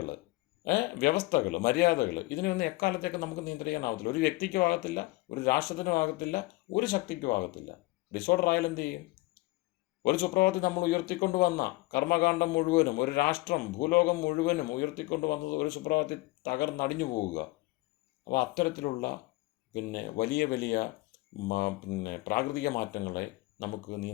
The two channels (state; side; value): quieter; right; 21.5 dB